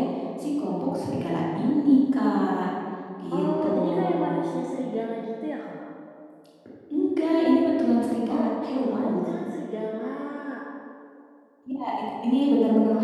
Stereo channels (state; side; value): identical; both; correlation 1.00